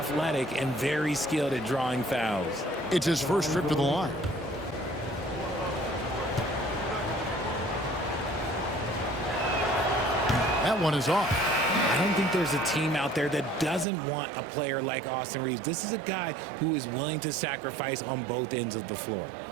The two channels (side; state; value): left; drops out; at 13.9 s